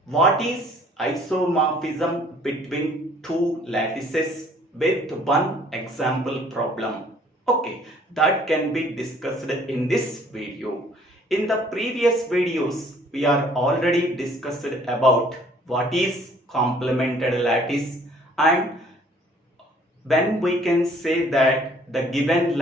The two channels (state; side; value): normal; both; correlation 0.58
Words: what is isomorphism between two lattices with one example problem. Okay, that can be discussed in this video. In the previous videos, we are already discussed about what is complemented lattice and when we can say that the given